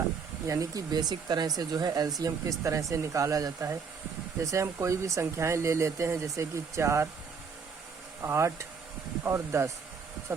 यानी कि बेसिक तरह से जो है एलसीएम किस तरह से निकाला जाता है। जैसे हम कोई भी संख्याएं ले लेते हैं, जैसे कि 4, 8 और 10।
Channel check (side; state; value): left; quieter; 5.7 dB